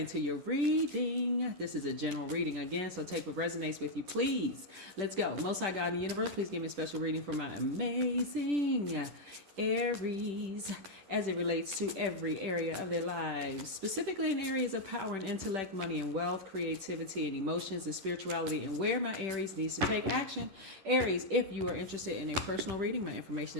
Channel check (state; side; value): late; left; 10 ms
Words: your reading. This is a general reading again, so take what resonates with you, please. Let's go. Most High God in the universe, please give me a special reading for my amazing Aries as it relates to every area of their lives, specifically in areas of power and intellect, money and wealth, creativity and emotions and spirituality, and where my Aries needs to take action. Aries, if you are interested in a personal reading, my information